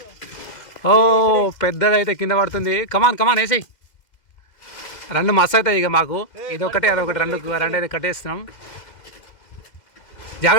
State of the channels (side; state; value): right; late; 2.0 ms